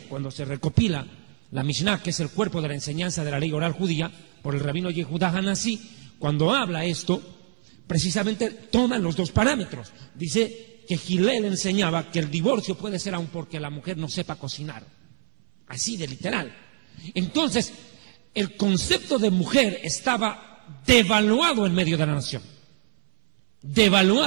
cuando se recopila la Mishnah, que es el cuerpo de la enseñanza de la ley oral judía, por el rabino Yehudá Hanasí, cuando habla esto, precisamente toman los dos parámetros. Dice que Hillel enseñaba que el divorcio puede ser aun porque la mujer no sepa cocinar. Así de literal. Entonces, el concepto de mujer estaba devaluado en medio de la nación.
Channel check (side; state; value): left; silent; 62 dB below the other